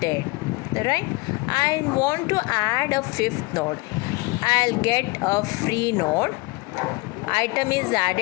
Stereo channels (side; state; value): right; quieter; 24.3 dB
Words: Right? I want to add a 5th node. I'll get a free node. Item is